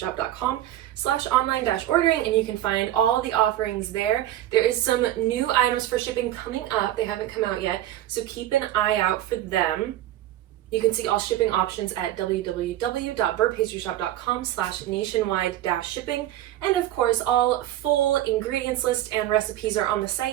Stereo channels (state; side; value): quieter; left; 13.4 dB